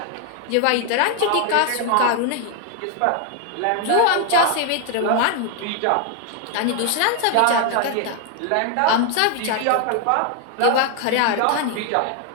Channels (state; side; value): different; both; correlation 0.01